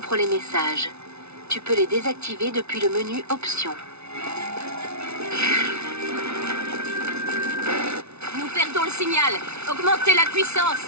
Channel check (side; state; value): left; late; 0.81 ms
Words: les messages. Tu peux les désactiver depuis le menu Options. Nous perdons le signal. Augmentez la puissance.